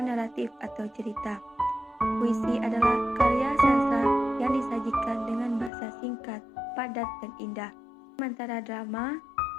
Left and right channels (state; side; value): drops out; right; at 5.7 s